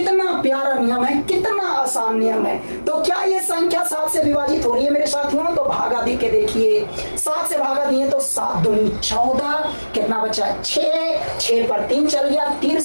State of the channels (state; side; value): inverted; both; correlation -1.00